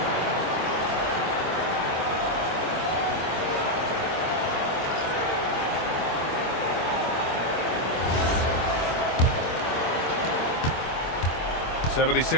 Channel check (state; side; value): late; right; 24 ms